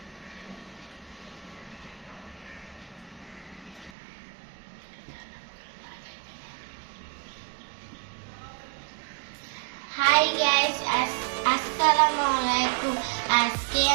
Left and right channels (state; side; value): drops out; left; at 3.9 s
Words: হাই গাইস, আসসালামু আলাইকুম। আজকে